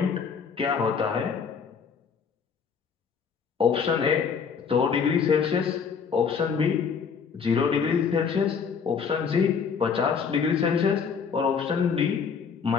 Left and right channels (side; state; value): right; quieter; 6.2 dB